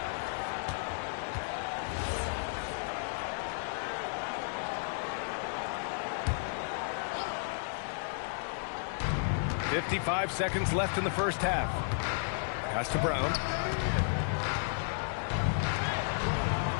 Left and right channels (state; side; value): silent; right; digital silence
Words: .55 seconds left in the first half. Pass to Brown.